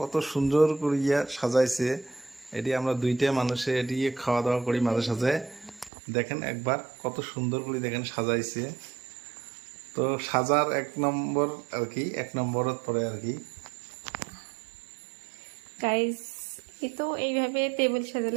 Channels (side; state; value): left; drops out; at 5.9 s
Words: সুন্দর করিয়া সাজাইছে। এটি আমরা দুইটা মানুষে এটি খাওয়া দাওয়া করি মাঝে সাঝে। দেখেন একবার কত সুন্দর করে দেখেন সাজাইছে। তো সাজার এক নম্বর আর কি, এক নম্বরত পরে আর কি। গাইস এই তো এইভাবে টেবিল